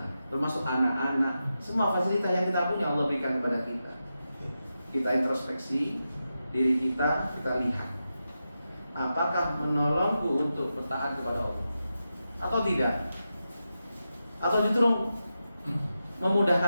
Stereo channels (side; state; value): both; inverted; correlation -0.89